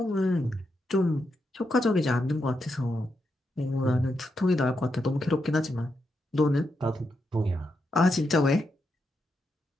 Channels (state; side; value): normal; both; correlation 0.84